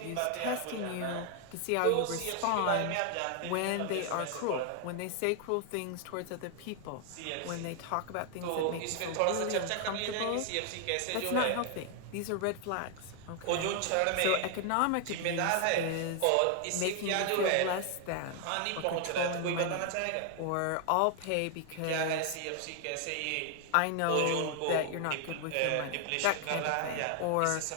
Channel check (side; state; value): both; different; correlation 0.00